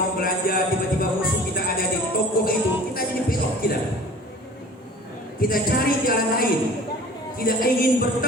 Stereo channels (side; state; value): both; normal; correlation 0.44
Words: belanja, tiba-tiba musuh kita ada di toko itu, kita jadi belok kita cari jalan lain, tidak ingin